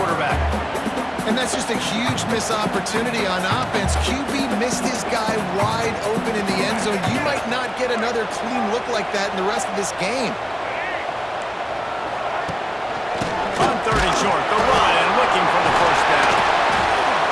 And that's just a huge missed opportunity on offense. QB missed his guy wide open in the end zone. You might not get another clean look like that in the rest of this game. On 3rd and short, the run and looking for the first down.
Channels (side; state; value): both; identical; correlation 1.00